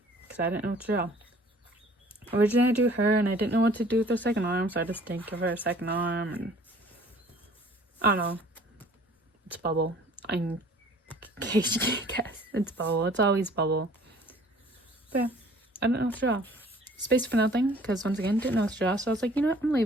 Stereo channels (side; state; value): both; normal; correlation 0.53